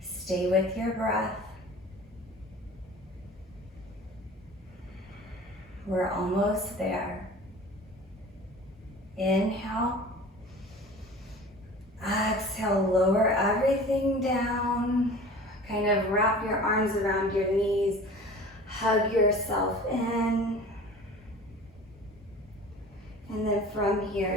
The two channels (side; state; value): both; normal; correlation 0.41